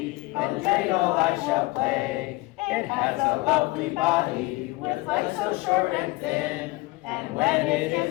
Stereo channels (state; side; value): quieter; right; 21.9 dB